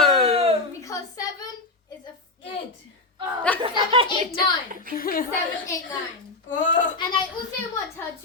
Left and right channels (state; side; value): quieter; right; 3.3 dB